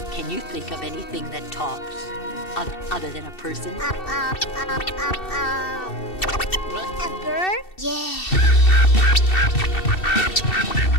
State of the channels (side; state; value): right; late; 2.7 ms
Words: Can you think of anything that talks other than a person? A bird? Yeah.